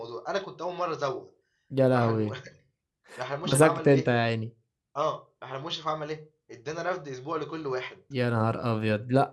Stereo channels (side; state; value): both; identical; correlation 1.00